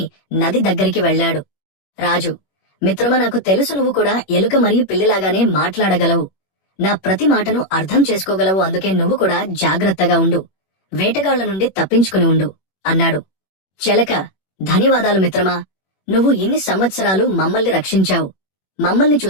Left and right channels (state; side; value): late; right; 21 ms